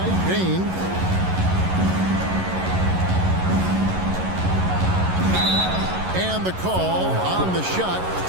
Bain. And the call on the shot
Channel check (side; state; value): left; late; 11 ms